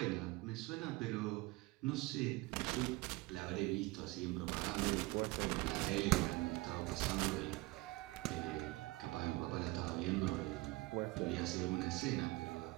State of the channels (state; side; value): quieter; left; 21.9 dB